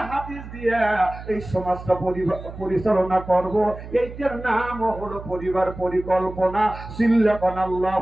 হাদিস দিয়ে এই সমাজটা পরিচালনা করব, এইটার নাম হলো পরিবার পরিকল্পনা। সিল্লাকান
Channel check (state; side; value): noise; right; hum, 13 dB below the sound